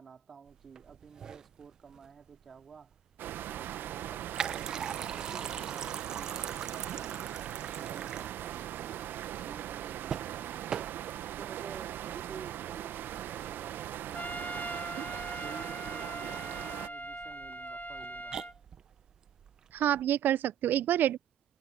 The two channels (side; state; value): left; quieter; 9.3 dB